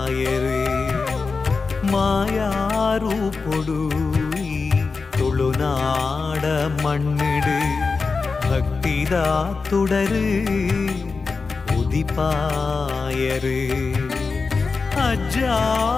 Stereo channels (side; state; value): right; quieter; 4.5 dB